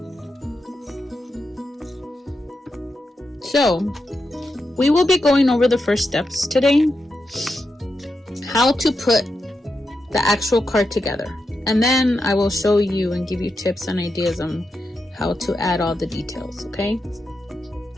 So, we will be going over the first steps today, how to put the actual card together. And then I will show you and give you tips and ideas on how to add all the details, okay?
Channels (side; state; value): both; normal; correlation 0.87